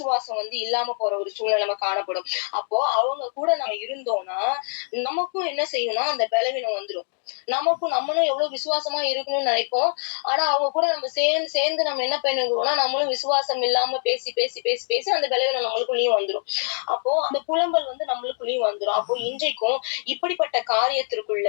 வந்து இல்லாம போற ஒரு சூழ்நிலை காணப்படும். அப்போ அவங்க கூட நம்ம இருந்தோம்னா நமக்கும் என்ன செய்யணும்னா அந்த பலவீனம் வந்துடும். நம்மளும் எவ்வளவு விசுவாசமா இருக்கணும்னு நினைப்போம். ஆனா அவங்க கூட நம்ம சேர்ந்து நம்ம என்ன பண்ணுவோம்னா நம்மளும் விசுவாசம் இல்லாம பேசி அந்த பலவீனம் நம்மளுக்குள்ளயும் வந்துடும். அப்போ அந்த புலம்பல் வந்து நம்மளுக்குள்ளயும் வந்துடும். அப்போ இன்றைக்கும் இப்படிப்பட்ட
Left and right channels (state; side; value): silent; right; 61 dB below the other